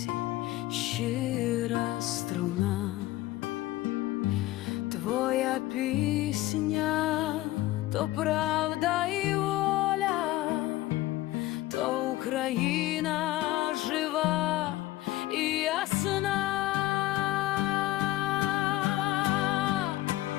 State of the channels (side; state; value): right; quieter; 16.7 dB